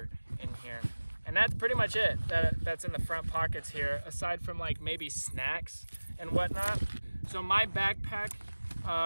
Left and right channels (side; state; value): both; inverted; correlation -1.00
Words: in here. And that's pretty much it that's in the front pockets here, aside from like maybe snacks and whatnot. So my backpack,